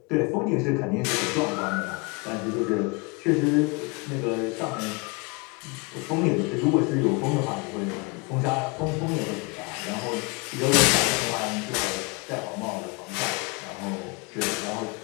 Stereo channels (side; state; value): right; quieter; 29.6 dB